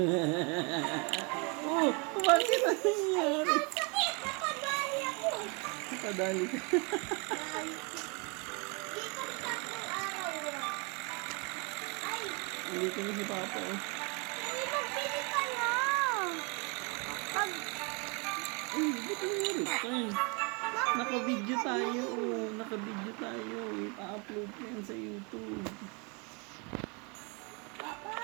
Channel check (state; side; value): quieter; left; 32.2 dB